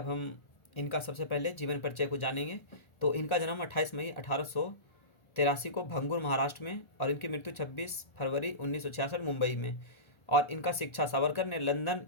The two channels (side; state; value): right; late; 1.4 ms